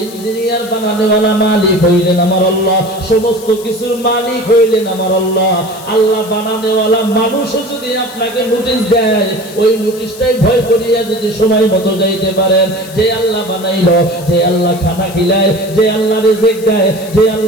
ইঞ্জিনিয়ার বানানোওয়ালা মালিক হইলেন আমার আল্লাহ, সমস্ত কিছুর মালিক হইলেন আমার আল্লাহ। আল্লাহ বানানোওয়ালা মানুষও যদি আপনাকে নোটিশ দেয়, ওই নোটিশটাই ভয় করিয়া যদি সময় মতো যাইতে পারেন, যে আল্লাহ বানাইলো, যে আল্লাহ খানা খিলায়, যে আল্লাহ রিজিক দেয়, যে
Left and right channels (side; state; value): left; noise; hiss, 17 dB below the sound